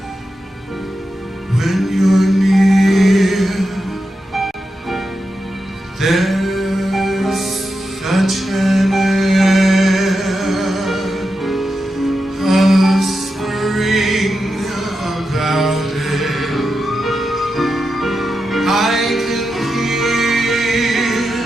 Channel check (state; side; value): normal; both; correlation 0.88